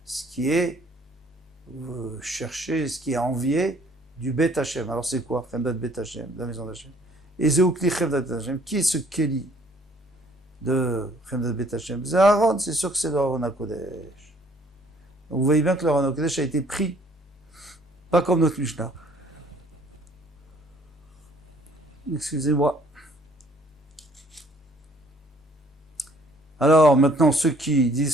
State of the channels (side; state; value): both; normal; correlation 0.60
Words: Ce qui est chercher, ce qui est envié du Bet Hashem. Alors c'est quoi? Chemdat Bet Hashem, la maison d'Hashem. Et Zeoukli Chemdat Bet Hashem. Qui est ce Keli de Chemdat Bet Hashem? C'est Aaron, c'est sûr que c'est le Aaron HaKodesh. Donc vous voyez bien que le Aaron HaKodesh a été pris, pas comme notre Mishnah. Excusez-moi. Alors maintenant, ceux qui